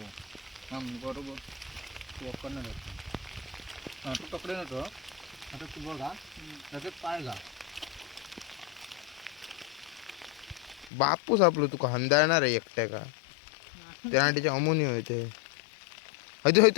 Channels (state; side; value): drops out; right; at 10.9 s